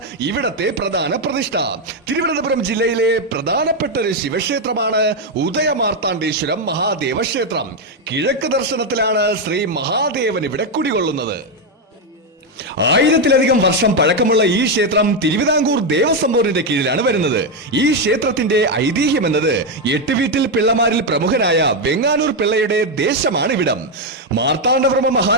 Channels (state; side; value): normal; both; correlation 0.05